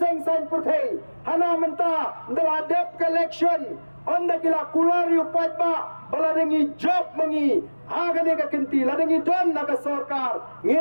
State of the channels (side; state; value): both; inverted; correlation -1.00